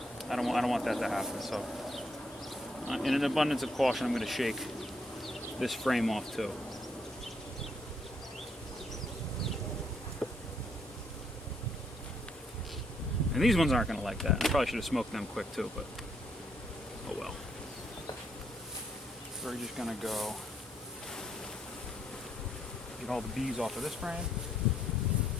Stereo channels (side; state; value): both; normal; correlation 0.73